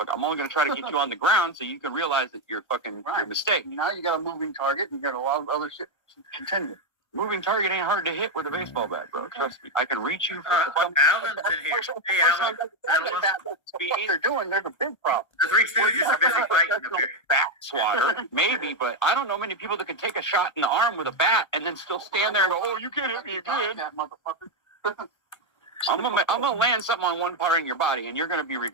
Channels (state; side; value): late; right; 1.3 ms